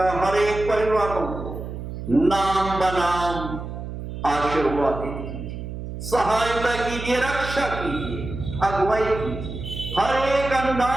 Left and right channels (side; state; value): right; noise; hum, 8 dB below the sound